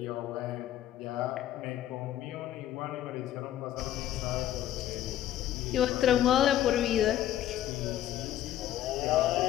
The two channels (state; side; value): quieter; right; 12.3 dB